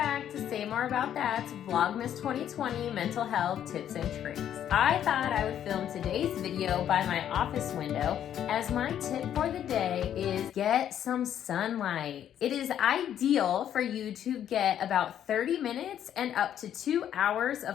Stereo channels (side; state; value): right; quieter; 10.2 dB